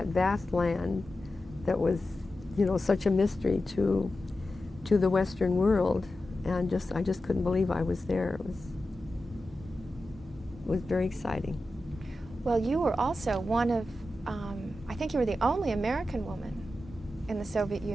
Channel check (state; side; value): normal; both; correlation 0.92